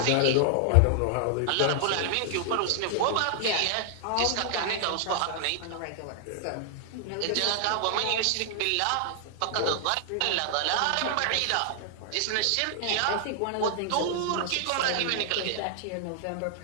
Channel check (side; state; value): both; different; correlation 0.00